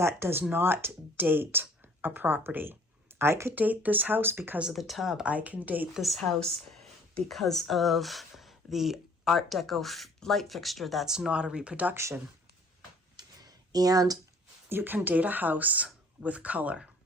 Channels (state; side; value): normal; both; correlation 0.54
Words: does not date a property. I could date this house because of the tub. I can date this house because of the Art Deco light fixture that's not a reproduction. And you can date a house with color.